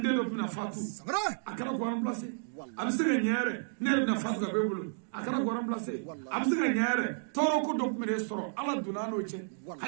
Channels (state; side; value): silent; left; digital silence